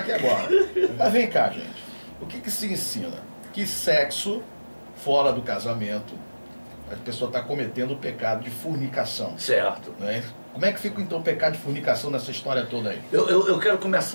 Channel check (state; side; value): inverted; both; correlation -1.00